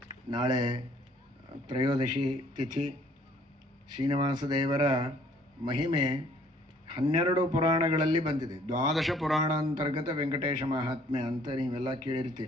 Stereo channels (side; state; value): both; normal; correlation 0.60